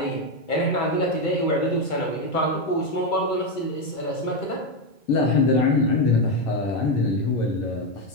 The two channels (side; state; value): right; late; 2.3 ms